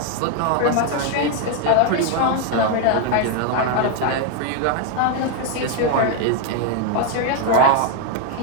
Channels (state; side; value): different; both; correlation 0.01